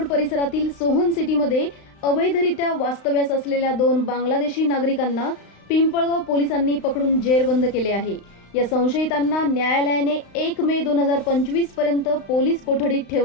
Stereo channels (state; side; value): late; right; 35 ms